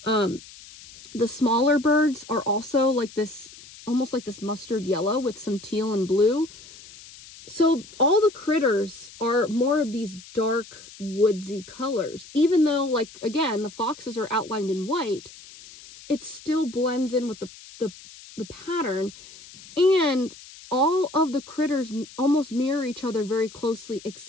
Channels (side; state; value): left; noise; hiss, 19 dB below the sound